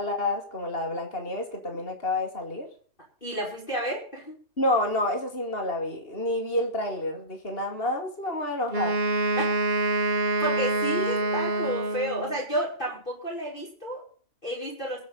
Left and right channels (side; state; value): right; late; 2.5 ms